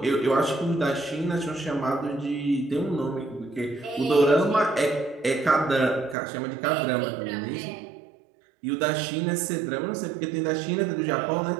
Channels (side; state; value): left; drops out; at 6.2 s